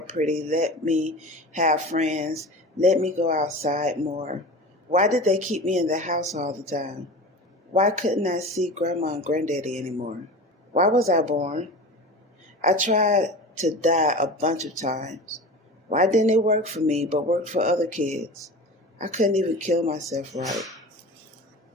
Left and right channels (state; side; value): normal; both; correlation 0.33